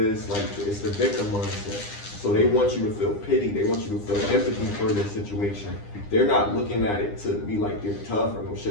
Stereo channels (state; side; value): late; right; 9.9 ms